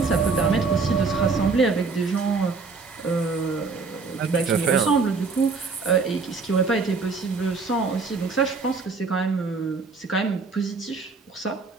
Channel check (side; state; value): left; quieter; 4.4 dB